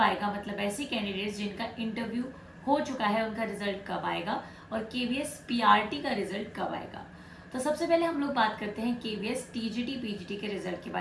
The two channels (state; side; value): identical; both; correlation 1.00